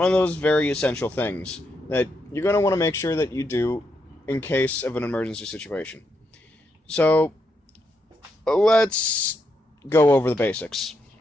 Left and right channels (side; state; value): both; normal; correlation 0.81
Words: of those very essential things that you're going to want to make sure that you do in case of an emergency situation. So, let's go over the basics.